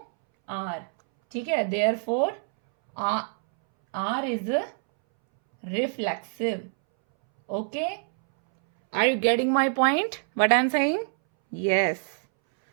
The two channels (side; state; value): left; silent; 61 dB below the other